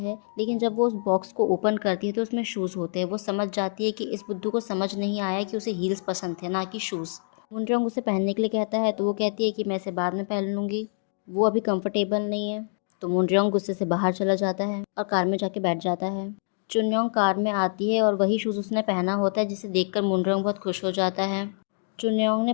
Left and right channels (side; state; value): right; silent; digital silence